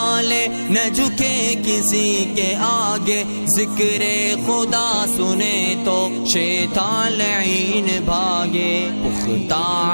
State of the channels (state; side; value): inverted; both; correlation -1.00